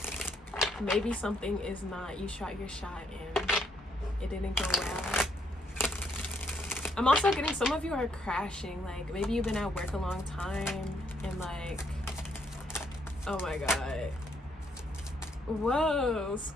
Maybe something is not, you shot your shot and it didn't go well. I'm also getting some of you are crashing, like maybe you've been at work a long time and like, oh my god, whoa,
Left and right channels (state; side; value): normal; both; correlation 0.72